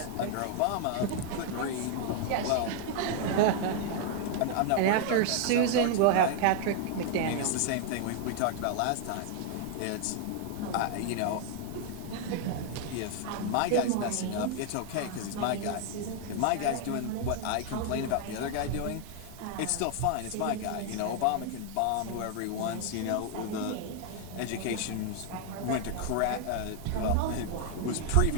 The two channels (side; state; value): both; different; correlation 0.00